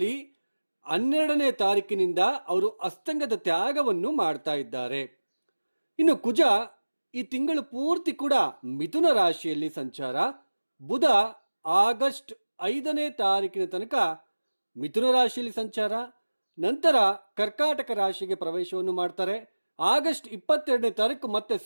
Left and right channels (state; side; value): inverted; both; correlation -1.00